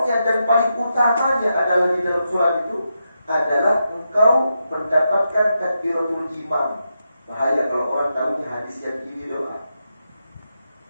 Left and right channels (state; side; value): inverted; both; correlation -0.86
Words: dan paling utamanya adalah di dalam sholat itu adalah engkau mendapatkan takbiratul imam. Bahaya kalau orang tahunya hadis yang ini doa.